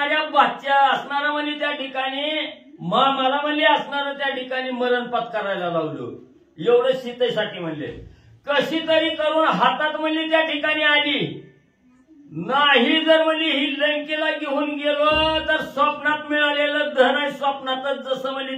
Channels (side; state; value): both; identical; correlation 1.00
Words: बादच्या असणारा म्हणजे त्या ठिकाणी मला म्हणजे असणारं त्या ठिकाणी मरण पत्करायला लावलं. एवढं सीतेसाठी म्हणले, कशी तरी करून हातात म्हणजे त्या ठिकाणी आली. नाही जर म्हणजे ही लंकेला घेऊन गेलो तर स्वप्नात मिळालेलं धन आहे स्वप्नातच जसं म्हणजे